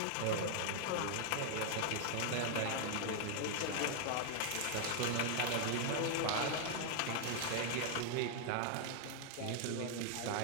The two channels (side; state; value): both; different; correlation 0.00